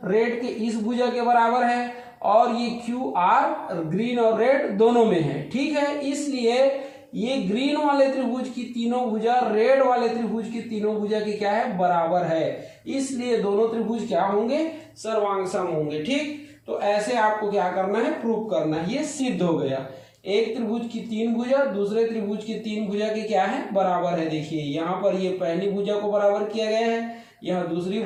रेड के इस भुजा के बराबर है और ये क्यू आर ग्रीन और रेड दोनों में है। ठीक है, इसलिए ये ग्रीन वाले त्रिभुज की तीनों भुजा रेड वाले त्रिभुज की तीनों भुजा की क्या है, बराबर है, इसलिए दोनों त्रिभुज क्या होंगे, सर्वांग सम होंगे। ठीक, तो ऐसे आपको क्या करना है, प्रूव करना है। ये सिद्ध हो गया, एक त्रिभुज की तीन भुजा दूसरे त्रिभुज की तीन भुजा के क्या है, बराबर है। देखिए यहाँ पर ये पहली भुजा को बराबर किया गया है, यहाँ दूसरी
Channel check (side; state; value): both; identical; correlation 1.00